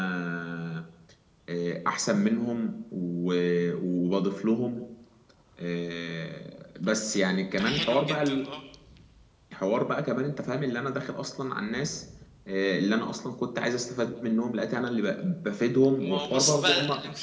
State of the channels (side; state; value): both; identical; correlation 1.00